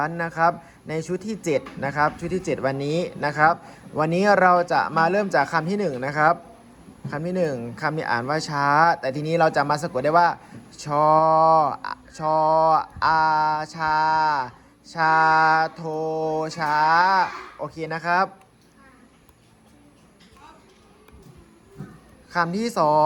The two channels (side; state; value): both; identical; correlation 1.00